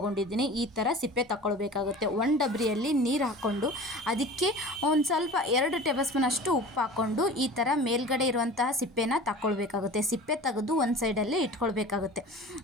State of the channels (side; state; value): both; normal; correlation 0.39